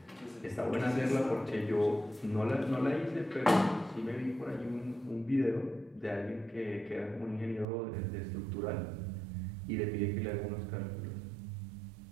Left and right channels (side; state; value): left; drops out; at 7.7 s